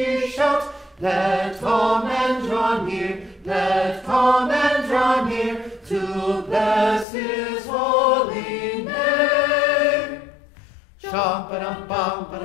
shout. Let come and draw near, let come and draw near to bless his holy name. Jump and bum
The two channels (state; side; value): drops out; right; at 7.1 s